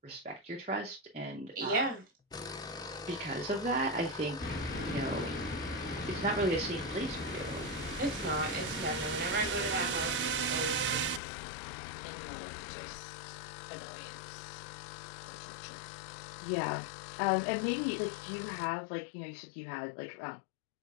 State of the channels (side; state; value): right; drops out; at 11.2 s